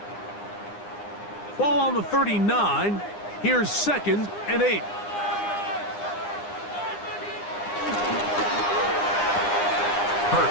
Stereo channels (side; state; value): right; late; 9.8 ms